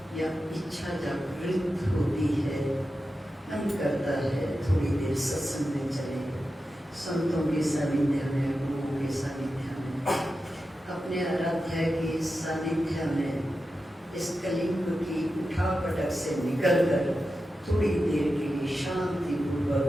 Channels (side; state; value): both; normal; correlation 0.91